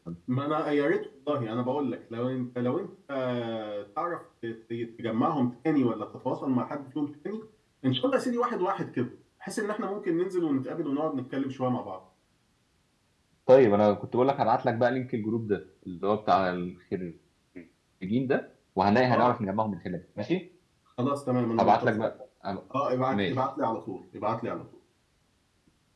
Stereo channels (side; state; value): both; identical; correlation 1.00